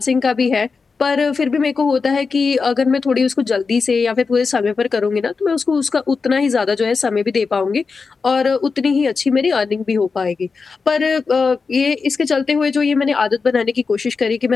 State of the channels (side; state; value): right; quieter; 4.8 dB